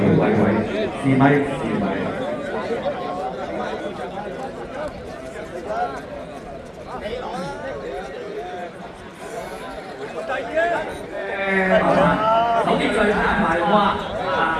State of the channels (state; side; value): identical; both; correlation 1.00